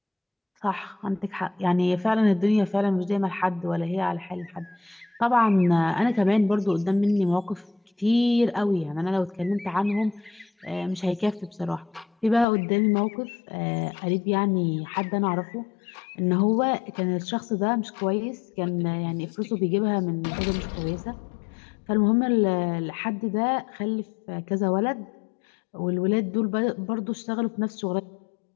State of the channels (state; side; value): drops out; right; at 12.5 s